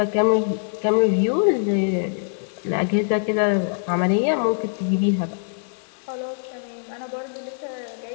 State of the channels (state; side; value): silent; right; digital silence